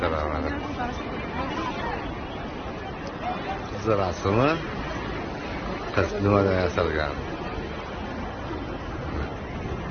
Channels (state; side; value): identical; both; correlation 1.00